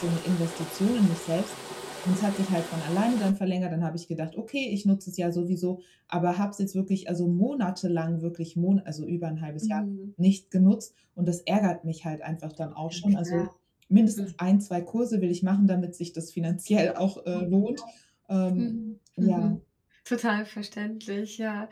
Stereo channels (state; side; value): identical; both; correlation 1.00